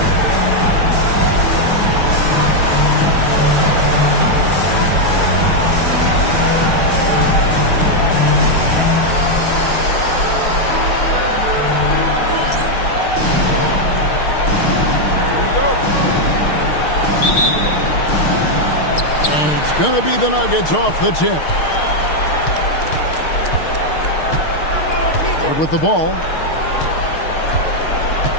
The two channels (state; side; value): late; right; 6.5 ms